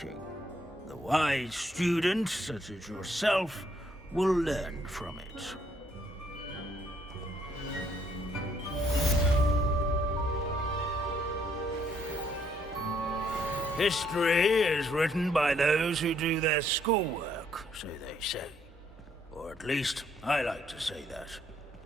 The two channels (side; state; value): both; normal; correlation 0.69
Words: The wise student, such as yourself, will learn from it. History is written by those who do their schoolwork, so they say. Or at least, I like to say that.